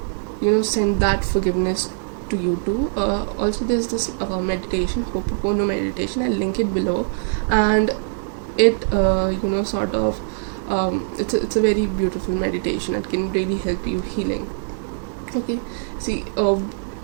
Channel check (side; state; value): left; silent; 64 dB below the other